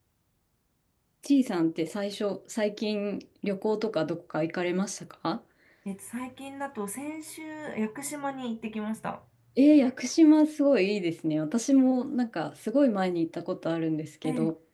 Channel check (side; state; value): both; identical; correlation 1.00